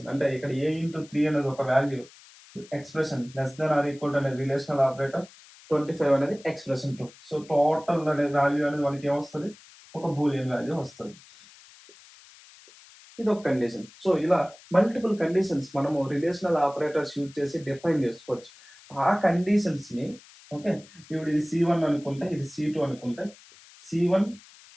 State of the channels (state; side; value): noise; left; hiss, 23 dB below the sound